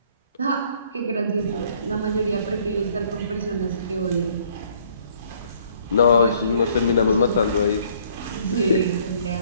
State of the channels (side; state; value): both; inverted; correlation -0.61